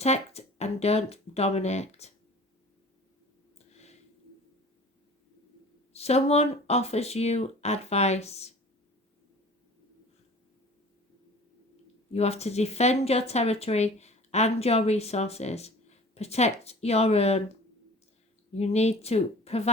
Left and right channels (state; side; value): normal; both; correlation 0.44